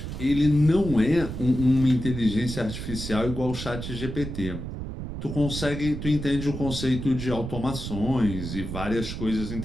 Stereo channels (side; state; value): right; noise; rumble, 7 dB below the sound